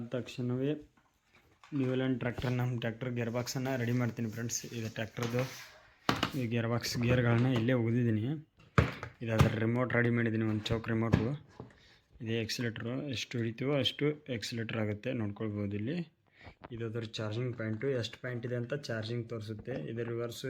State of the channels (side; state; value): both; identical; correlation 1.00